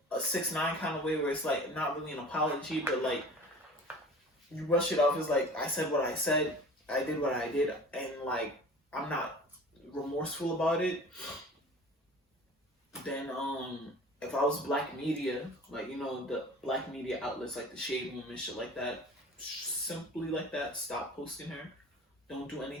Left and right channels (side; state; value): both; normal; correlation 0.42